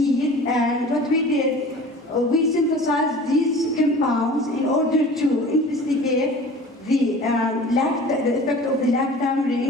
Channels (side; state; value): both; normal; correlation 0.42